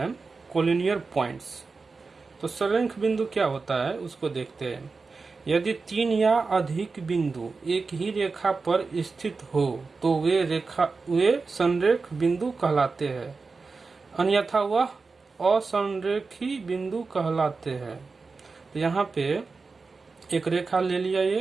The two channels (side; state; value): left; quieter; 4.3 dB